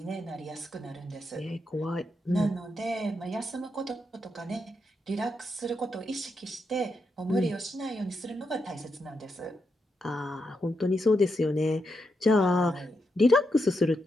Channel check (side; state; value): both; normal; correlation 0.84